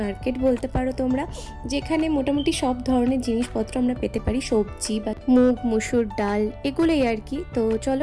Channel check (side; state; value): both; identical; correlation 1.00